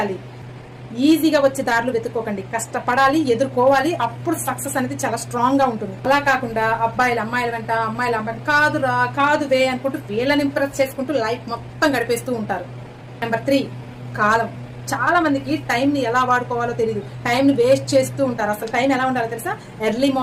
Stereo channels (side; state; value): both; identical; correlation 1.00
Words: ఈజీగా వచ్చే దారులు వెతుక్కోకండి, కష్టపడాలి, ఎదుర్కోవాలి. అప్పుడు సక్సెస్ అనేది చాలా స్ట్రాంగ్ గా ఉంటుంది. అలా కాకుండా అమ్మాయిల వెంట కాదురా కాదువే అనుకుంటూ వీళ్ళని ఇంప్రెస్ చేసుకుంటూ లైఫ్ మొత్తం గడిపేస్తూ ఉంటారు. నెంబర్ 3, కాలం. చాలా మందికి టైం ని ఎలా వాడుకోవాలో తెలియదు, టైం ని వేస్ట్ చేస్తూ ఉంటారు. అసలు టైం ఎలా ఉండాలో తెలుసా? ఎర్లీ